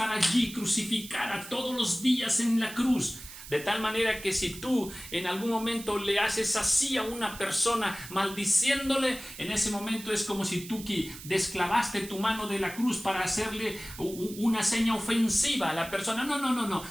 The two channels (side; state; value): right; noise; hiss, 14 dB below the sound